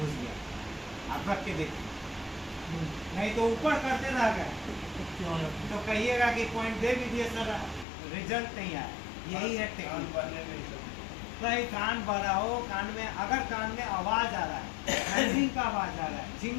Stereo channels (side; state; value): right; drops out; at 7.9 s